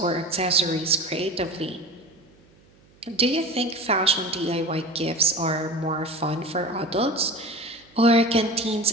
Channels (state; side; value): noise; right; hum, 30 dB below the sound